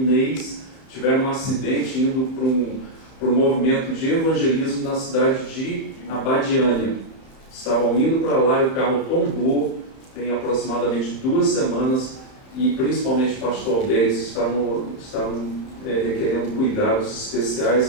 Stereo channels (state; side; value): late; right; 31 ms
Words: tiveram um acidente indo para um movimento de evangelismo na cidade de Abadiânia. Estavam indo para lá e o carro tombou, tem aproximadamente 2 semanas, e principalmente o pastor Alberto estavam requerendo cuidados